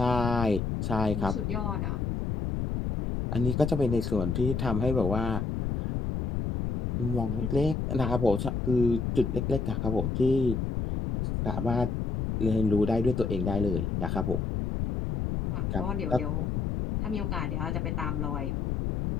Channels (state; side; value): noise; left; rumble, 1 dB below the sound